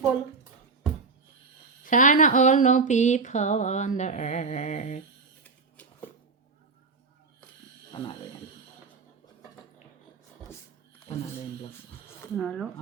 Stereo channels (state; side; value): quieter; left; 4.4 dB